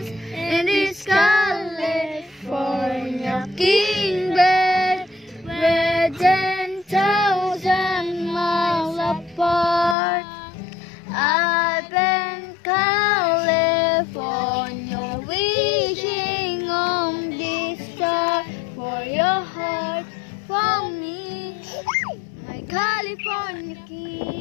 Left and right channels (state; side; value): drops out; right; at 10.0 s